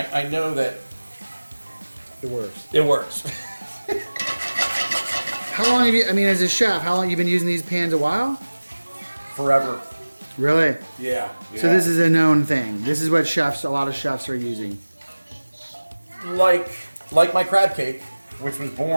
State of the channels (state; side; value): inverted; both; correlation -1.00